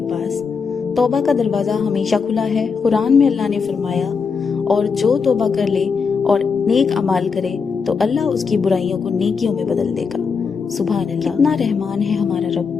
پاس۔ توبہ کا دروازہ ہمیشہ کھلا ہے۔ قرآن میں اللہ نے فرمایا، اور جو توبہ کر لے اور نیک اعمال کرے تو اللہ اس کی برائیوں کو نیکیوں میں بدل دے گا۔ سبحان اللہ، کتنا رحمان ہے ہمارا رب۔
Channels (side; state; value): right; quieter; 5.5 dB